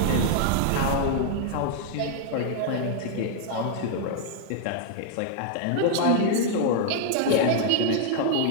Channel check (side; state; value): both; different; correlation -0.01